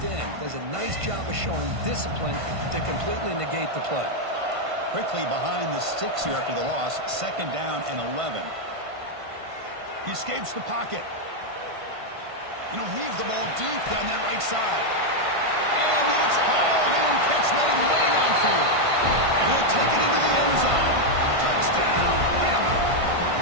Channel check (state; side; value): late; left; 1.5 ms